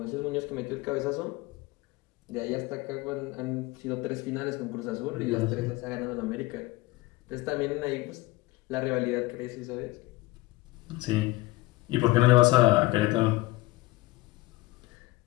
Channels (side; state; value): right; quieter; 20.4 dB